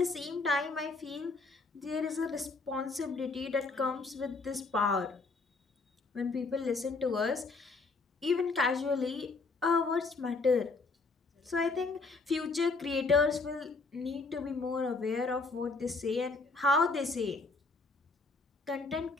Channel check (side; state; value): right; quieter; 3.8 dB